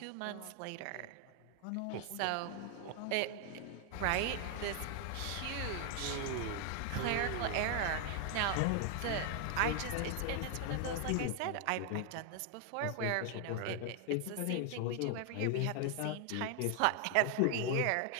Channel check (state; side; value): different; both; correlation 0.00